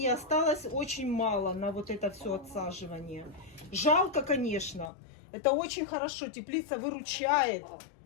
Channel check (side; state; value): right; drops out; at 4.9 s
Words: осталось очень мало на вот это все отсаживание. Жалко, конечно. Это очень хорошо. Теплица выручает.